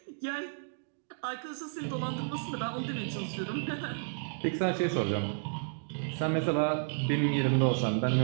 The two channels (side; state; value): left; silent; digital silence